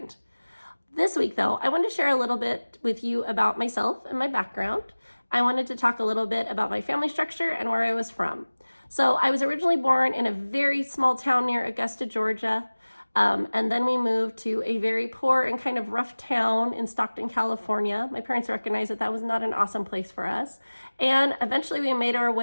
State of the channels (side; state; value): both; inverted; correlation -1.00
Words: This week, though, I wanted to share a little bit with you about myself and my background. I wanted to talk a little bit about my family structure and where I was from. So I was originally born in a very small town near Augusta, Georgia. And then we moved to a very poor and kind of rough town in Stockton, California. My parents recognized that that was not an awesome place for us. And eventually we made our